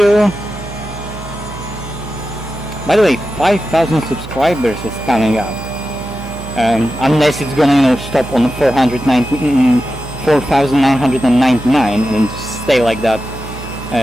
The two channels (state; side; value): noise; right; hum, 12 dB below the sound